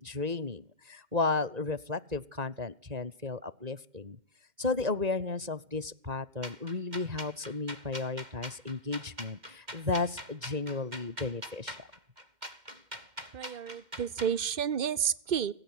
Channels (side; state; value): left; late; 2.1 ms